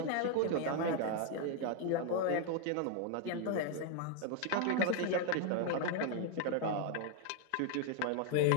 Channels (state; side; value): different; both; correlation 0.01